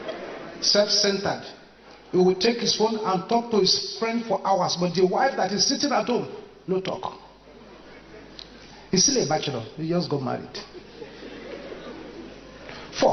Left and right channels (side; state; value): both; identical; correlation 1.00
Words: self-centered. He will take his phone and talk to his friend for hours, but the wife that is sitting at home, no talk. He's still a bachelor. He just got married.